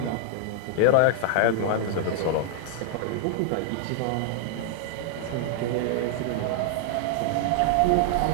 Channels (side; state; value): both; different; correlation 0.00